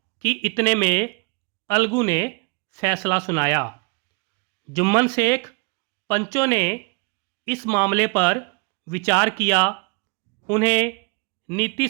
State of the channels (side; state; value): left; quieter; 31.9 dB